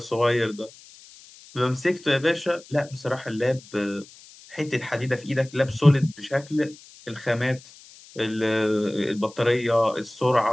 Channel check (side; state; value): left; noise; hiss, 22 dB below the sound